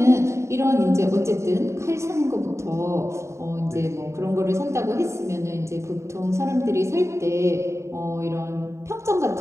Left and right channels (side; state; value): left; late; 0.14 ms